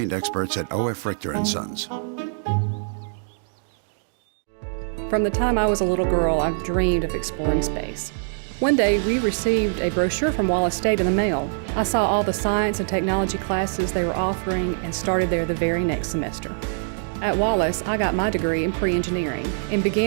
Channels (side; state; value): left; silent; digital silence